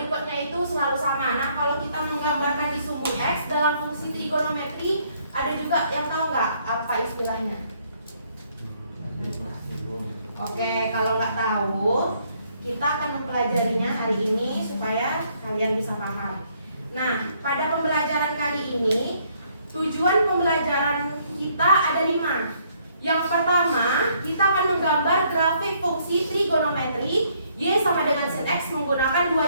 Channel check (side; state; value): both; inverted; correlation -0.68